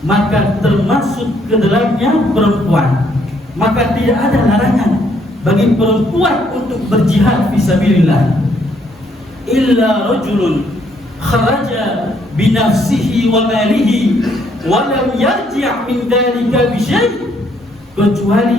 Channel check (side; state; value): both; normal; correlation 0.69